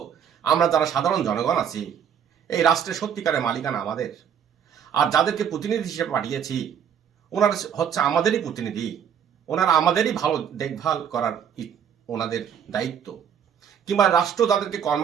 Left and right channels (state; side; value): quieter; left; 8.2 dB